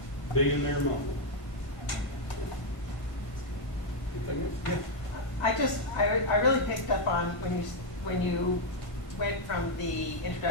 Be in their moment. Anything else? Yeah. I really picked up on when you went from the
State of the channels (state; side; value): late; right; 1.6 ms